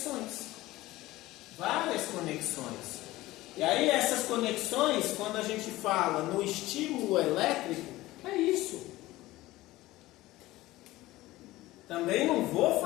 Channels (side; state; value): right; quieter; 17.7 dB